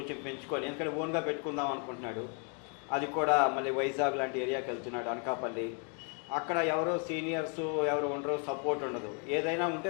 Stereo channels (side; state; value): right; quieter; 39.3 dB